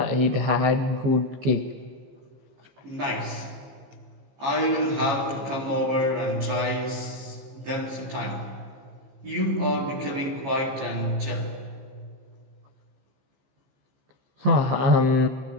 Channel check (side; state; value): left; late; 15 ms